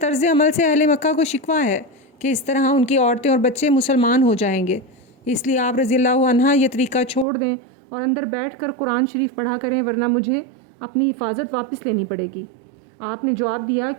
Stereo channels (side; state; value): left; drops out; at 7.2 s